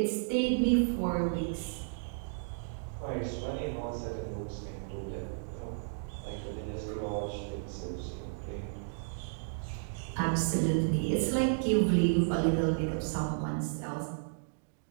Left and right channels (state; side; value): silent; left; digital silence